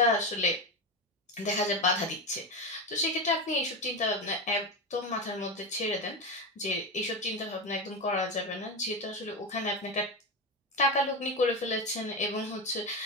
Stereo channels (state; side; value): normal; both; correlation 0.17